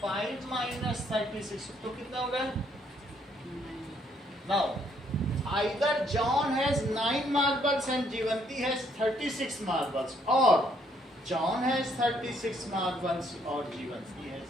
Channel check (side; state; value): both; normal; correlation 0.69